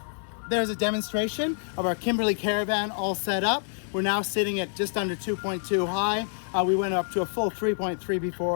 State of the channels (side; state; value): right; silent; 59 dB below the other